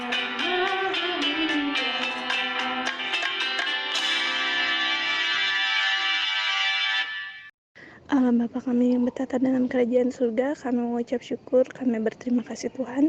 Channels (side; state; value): both; identical; correlation 1.00